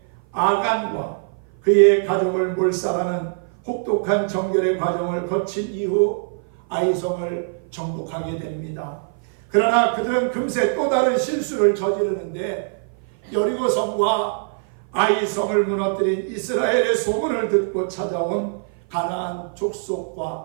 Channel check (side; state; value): left; silent; 55 dB below the other